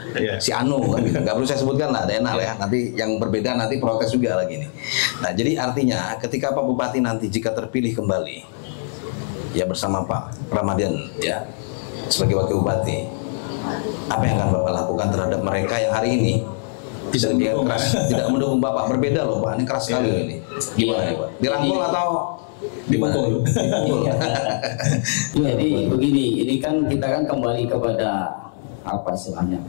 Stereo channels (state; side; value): silent; right; 64 dB below the other